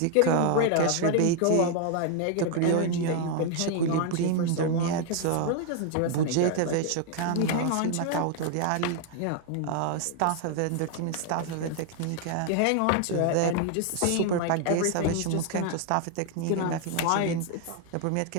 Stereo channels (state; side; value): different; both; correlation 0.00